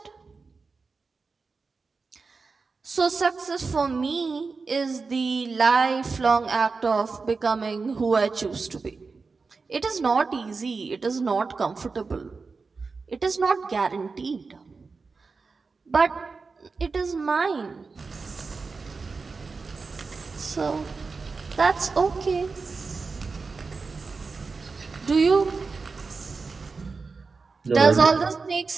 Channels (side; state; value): left; quieter; 4.4 dB